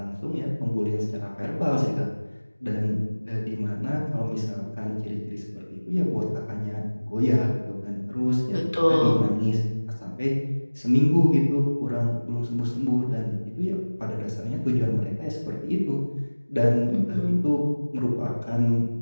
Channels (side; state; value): both; inverted; correlation -1.00